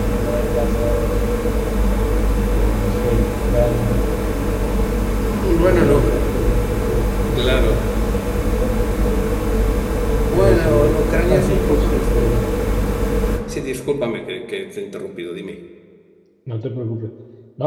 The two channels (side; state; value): both; identical; correlation 1.00